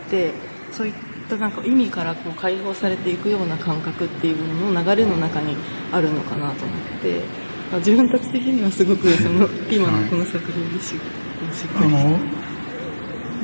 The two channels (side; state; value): both; inverted; correlation -1.00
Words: て、そういったなんか意味からこう解放されていくような感覚っていうものの流れの中にあるのかなと思って、自分たち的にはすごくその今のこの作品でしっくりき